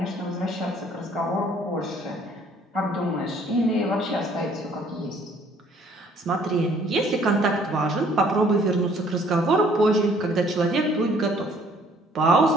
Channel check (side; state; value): both; normal; correlation 0.60